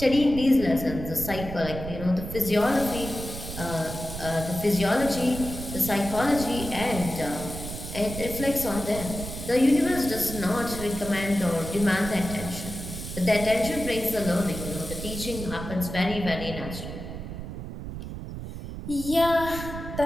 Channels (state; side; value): noise; right; rumble, 8 dB below the sound